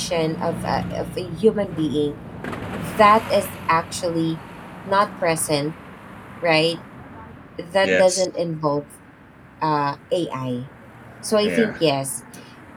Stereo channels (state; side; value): identical; both; correlation 1.00